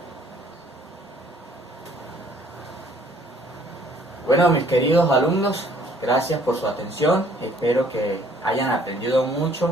Bueno, mis queridos alumnos, Gracias por su atención, espero que hayan aprendido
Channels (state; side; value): normal; both; correlation 0.60